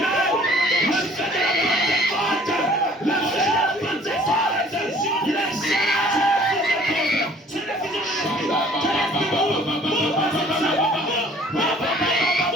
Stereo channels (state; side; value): normal; both; correlation 0.54